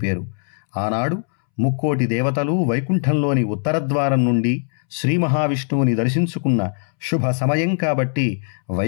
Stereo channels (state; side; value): silent; right; 65 dB below the other